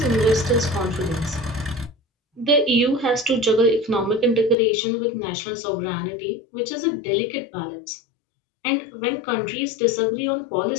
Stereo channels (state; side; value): drops out; right; at 4.5 s